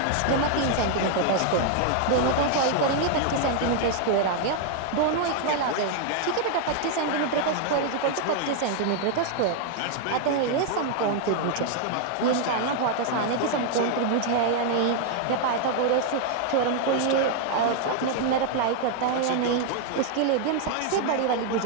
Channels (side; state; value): both; different; correlation 0.00